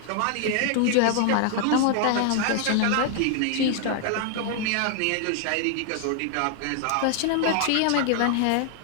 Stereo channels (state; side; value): different; both; correlation 0.00